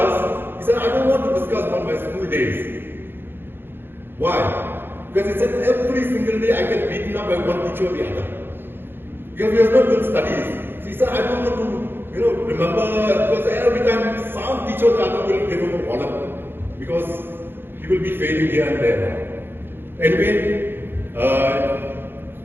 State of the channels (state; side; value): late; left; 0.10 ms